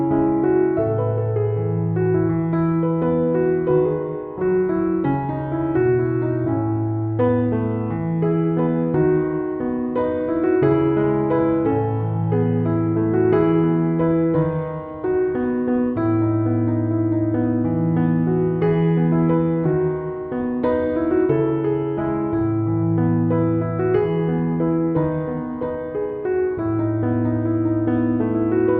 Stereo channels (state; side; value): identical; both; correlation 1.00